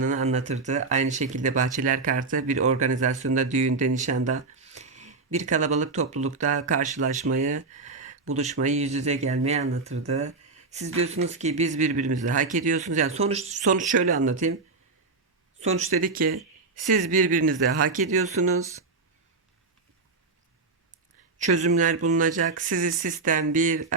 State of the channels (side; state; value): left; quieter; 4.0 dB